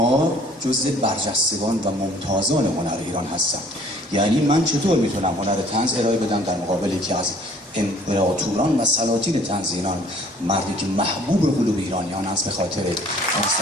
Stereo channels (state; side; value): normal; both; correlation 0.55